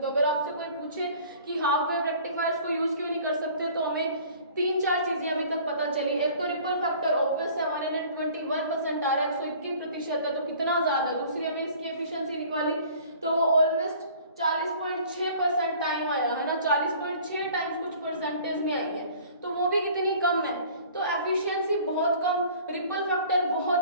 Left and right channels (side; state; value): both; inverted; correlation -0.49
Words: अगर आपसे कोई पूछे कि हाफ वेव रेक्टिफायर्स को यूज क्यों नहीं कर सकते, तो हमें 3-4 चीजें अभी तक पता चली। एक तो रिपल फैक्टर ऑब्वियस है, 121% आ रहा है, 121% है, तो कितना ज्यादा। दूसरी हमने इसकी एफिशिएंसी निकाली तो वो ऑलमोस्ट 40.6% टाइम आया है ना, 40.6 टाइम्स कुछ परसेंटेज में आई है, तो वो भी कितनी कम है। तो एफिशिएंसी बहुत कम, रिपल फैक्टर बहुत